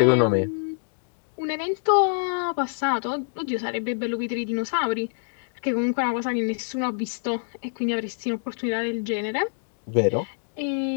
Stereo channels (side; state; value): right; silent; digital silence